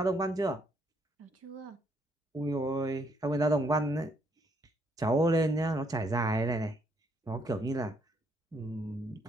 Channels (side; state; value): both; normal; correlation 0.71